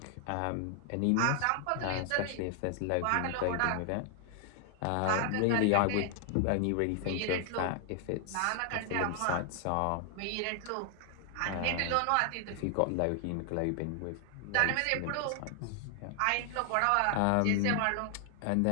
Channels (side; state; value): both; different; correlation 0.00